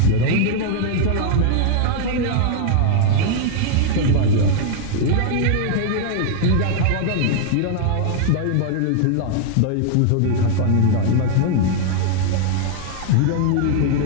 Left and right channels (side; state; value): both; different; correlation 0.00